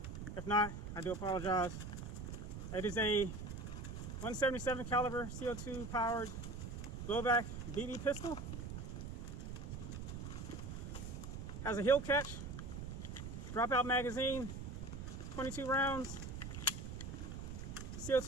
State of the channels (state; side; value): noise; right; rumble, 7 dB below the sound